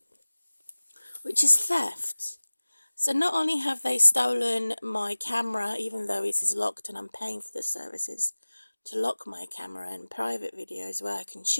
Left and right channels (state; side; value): inverted; both; correlation -1.00